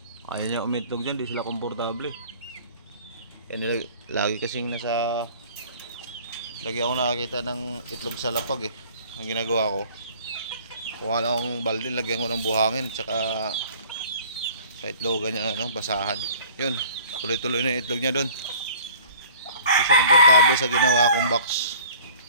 Ayaw niya umitlog dyan. Di sila komportable eh. Kaya lagi kasing nasa Lagi ako nakakita ng itlog sa lapag eh. Ang ginagawa ko, kuha lang akong balde, lagyan ko ng buhangin, tsaka sa itlogan niya, ano, basahan. Yun, tuloy-tuloy na yung itlog niya doon. Hindi siya komportable sa ginawa kong box.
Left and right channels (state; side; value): inverted; both; correlation -0.49